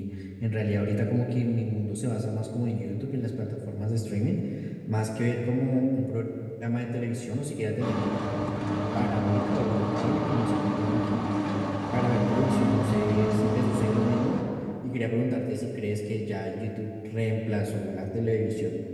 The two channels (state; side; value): identical; both; correlation 1.00